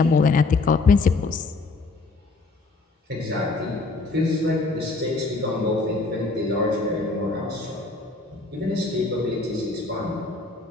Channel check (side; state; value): right; quieter; 3.6 dB